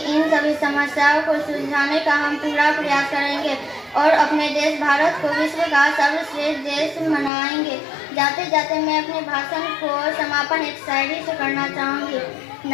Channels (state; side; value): drops out; right; at 7.3 s